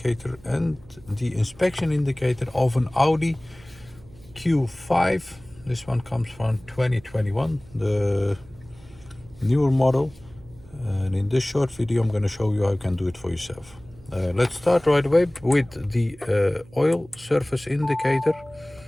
and the inspection indicator of an Audi Q5. This one comes from 2021, the newer model, and in this short video I'm going to show you how you can do it for yourself. Let's start right away with the oil surface indicator.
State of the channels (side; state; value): right; noise; hum, 24 dB below the sound